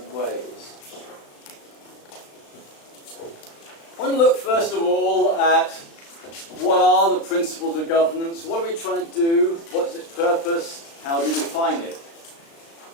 ways. I want to look first of all at what are the principles of governance, what are we trying to do, what's its purpose, how do we define it.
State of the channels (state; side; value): late; right; 36 ms